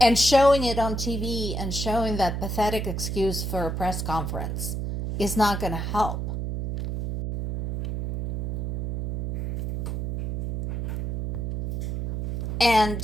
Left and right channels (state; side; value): noise; right; hum, 3 dB below the sound